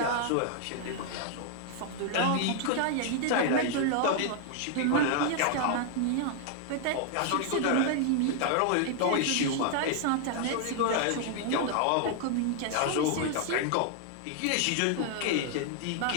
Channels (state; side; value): different; both; correlation 0.00